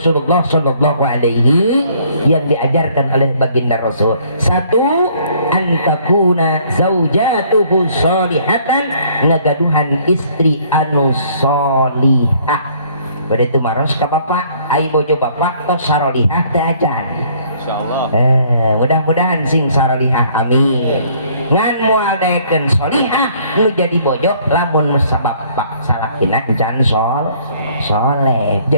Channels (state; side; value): inverted; both; correlation -0.61